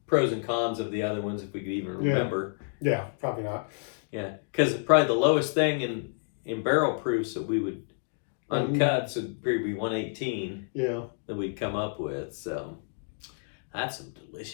pros and cons of the other ones if we could even remember. Yeah, probably not. Yeah, because probably the lowest thing in barrel proofs that we would uncut would probably be 118. Yeah, that we'd come up with. So that's some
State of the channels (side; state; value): right; silent; digital silence